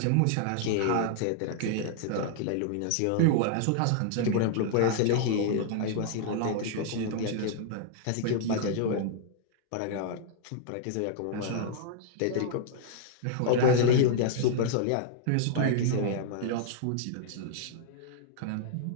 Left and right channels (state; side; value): different; both; correlation -0.01